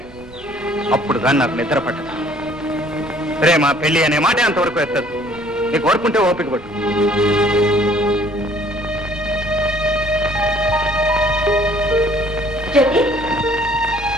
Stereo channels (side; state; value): right; noise; rumble, 23 dB below the sound